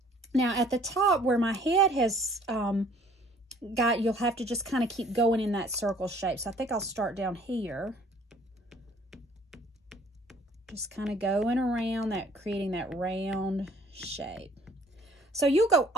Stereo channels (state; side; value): normal; both; correlation 0.56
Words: Now at the top where my head has you'll have to just kind of keep going in that circle shape. So I think I'll start down here. Just kind of going around that, creating that round shape. So you'll go